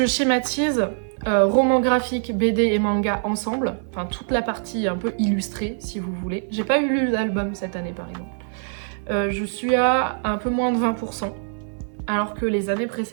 schématise, romans graphiques, BD et manga ensemble, enfin toute la partie un peu illustrée si vous voulez. J'ai pas eu lu l'album cette année par exemple. Je suis à un peu moins de 20%, alors que les années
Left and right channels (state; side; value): silent; left; digital silence